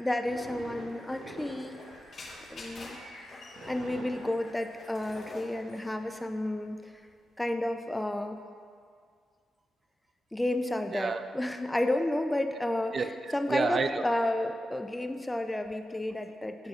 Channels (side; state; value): both; normal; correlation 0.93